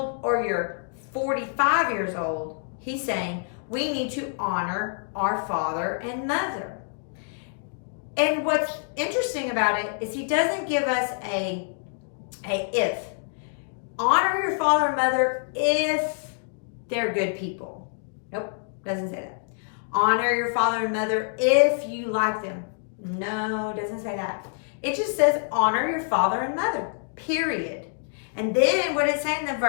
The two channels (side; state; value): right; silent; digital silence